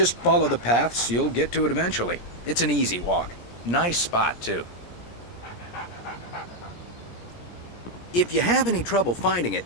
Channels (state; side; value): late; right; 17 ms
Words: follow the paths, you'll get to it eventually. It's an easy walk. Nice spot, too. If you have any trouble finding it,